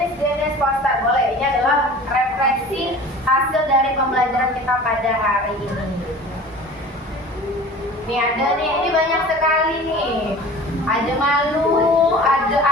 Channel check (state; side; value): normal; both; correlation 0.41